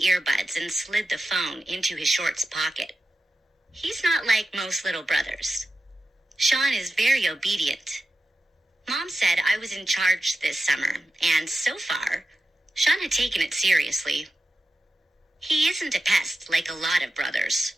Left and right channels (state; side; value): normal; both; correlation 0.93